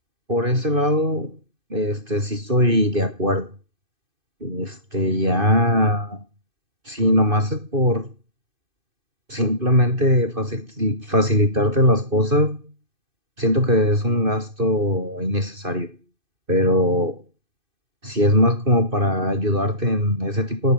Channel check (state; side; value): late; left; 2.5 ms